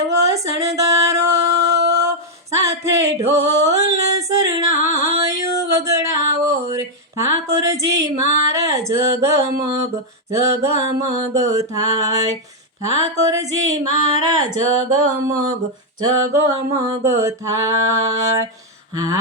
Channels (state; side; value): normal; both; correlation -0.01